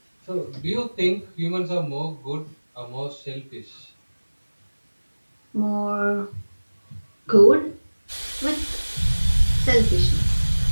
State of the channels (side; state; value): both; inverted; correlation -1.00